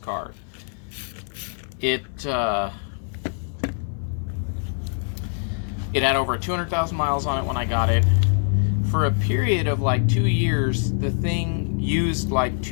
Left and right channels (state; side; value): silent; right; 63 dB below the other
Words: It had over 200,000 miles on it when I got it. For a period of like 2 years, the thing used like